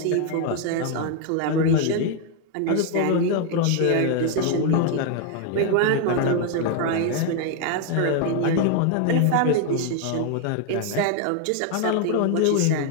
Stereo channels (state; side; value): different; both; correlation 0.01